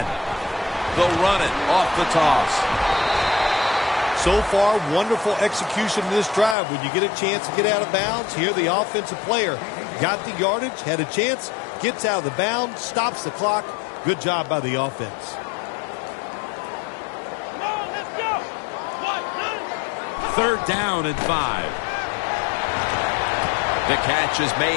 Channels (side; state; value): right; drops out; at 6.6 s